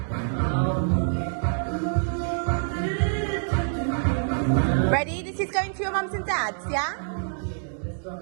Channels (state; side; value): silent; left; digital silence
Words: Ready? This is going to your mums and dads, yeah?